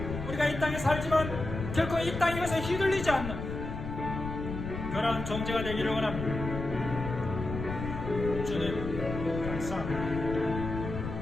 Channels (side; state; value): left; noise; rumble, 6 dB below the sound